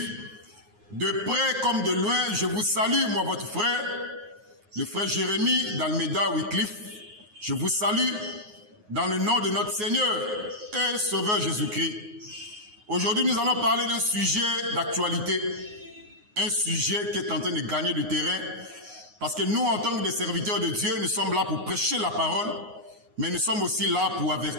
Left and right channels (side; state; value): left; late; 9.5 ms